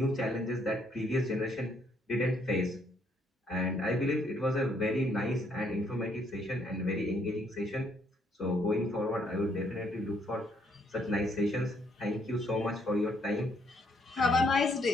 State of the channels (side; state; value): both; normal; correlation 0.70